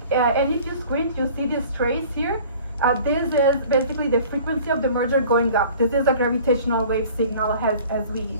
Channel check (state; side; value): inverted; both; correlation -0.47